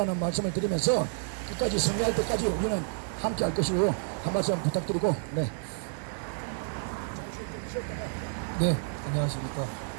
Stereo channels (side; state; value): left; silent; digital silence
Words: 말씀을 드리면서 끝까지 승리할 때까지 우리는 함께 할 것이고, 한 말씀 부탁드리고. 네. 네, 안녕하십니까.